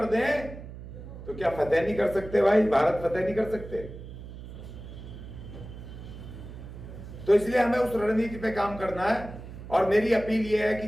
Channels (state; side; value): noise; right; hum, 13 dB below the sound